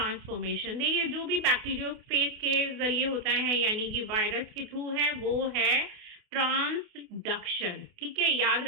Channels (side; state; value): left; late; 28 ms